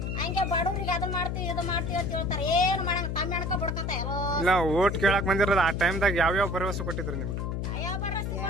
ಹಂಗೆ ಬಡವ್ರಿಗೆ ಅದನ್ನ ಮಾಡ್ತೀವಿ ಇದು ಮಾಡ್ತೀವಿ ಅಂತ ಹೇಳ್ತಾರೆ ಏನು ಮಾಡಂಗ ತಮ್ಮ ಹೆಣ್ಕ ಬಡ್ಕಂತ ಇಲ್ಲ ಓಟ್ ಕೇಳಕ್ ಬಂದಿರೋದು ಆ ಟೈಮ್ದಾಗ ಯಾವ್ಯಾವ ಭರವಸೆ ಕೊಟ್ಟಿದ್ರು ನಿಮ್ಗೆ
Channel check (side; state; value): left; noise; hum, 2 dB below the sound